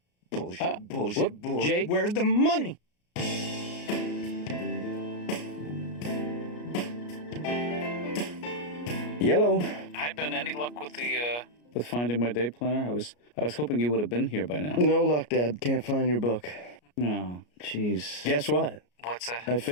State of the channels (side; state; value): right; late; 33 ms